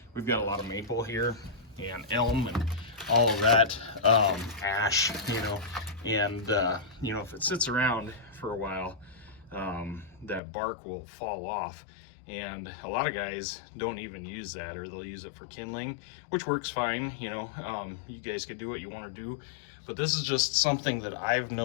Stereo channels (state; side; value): drops out; right; at 10.4 s